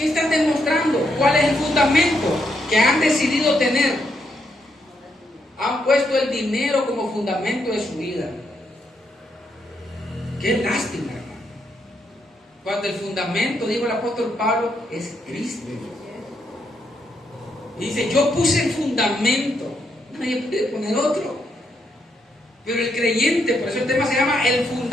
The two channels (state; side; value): normal; both; correlation 0.78